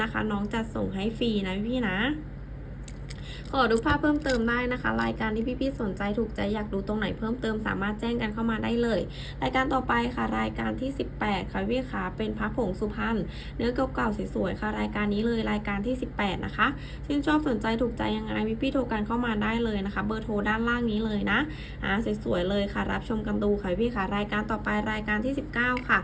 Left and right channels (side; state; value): both; identical; correlation 1.00